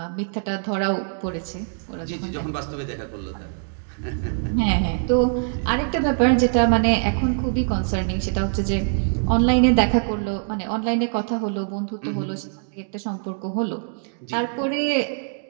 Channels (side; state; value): left; silent; 63 dB below the other